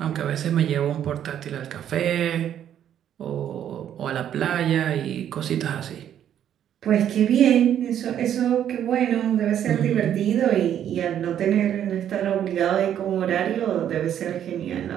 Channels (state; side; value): quieter; left; 10.1 dB